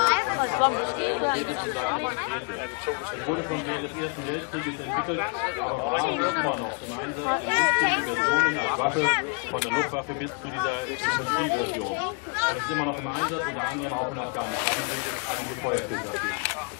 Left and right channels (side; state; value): right; quieter; 35.0 dB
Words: Kampfpanzer montiert ist und gleich demonstriert wird. Es wurde schon während des Ersten Weltkrieges entwickelt, aber war und ist immer noch im Einsatz in unzähligen Versionen als Waffe, von der Luftwaffe bis zu dieser Infanterieversion. Es ist immer noch im Einsatz, unter anderem auch in Afghanistan. Sind jetzt einige Feuerfilter dafür.